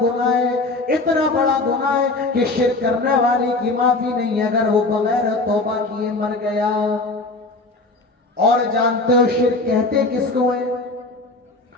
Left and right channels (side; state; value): right; quieter; 3.1 dB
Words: گناہ ہے، اتنا بڑا گناہ ہے کہ شرک کرنے والے کی معافی نہیں اگر وہ بغیر توبہ کیے مر گیا۔ اور جانتے ہو شرک کہتے کس کو ہے؟